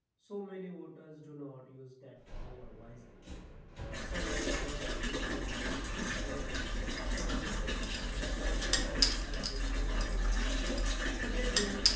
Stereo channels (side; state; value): both; identical; correlation 1.00